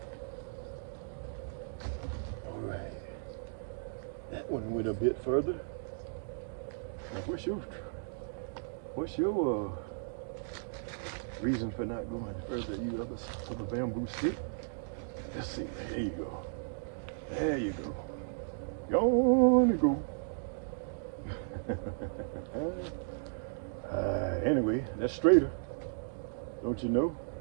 One went a bit further. Now, what's your reason for not going further? You other bamboo stick? Let's see. There you go. There you go. Gonna go. Anyway, that's straighter. Don't you know?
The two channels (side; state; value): left; silent; digital silence